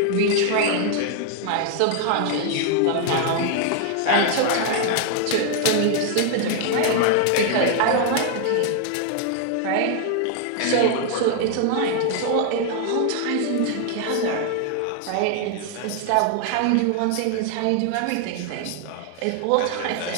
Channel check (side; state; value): both; different; correlation 0.00